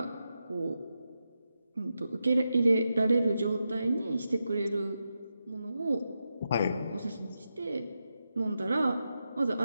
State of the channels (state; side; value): inverted; both; correlation -0.88